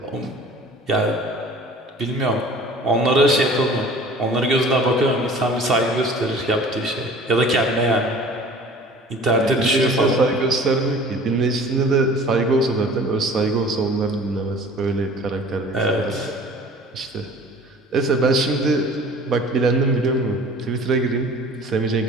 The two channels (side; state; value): both; normal; correlation 0.46